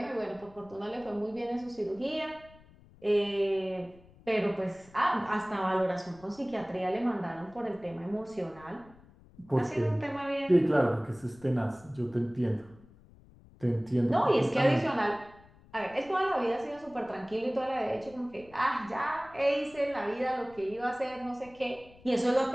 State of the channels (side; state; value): left; noise; rumble, 24 dB below the sound